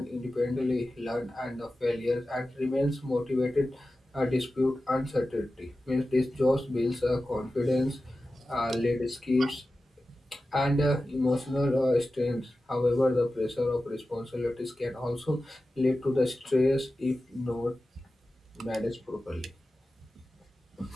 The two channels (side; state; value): both; normal; correlation 0.94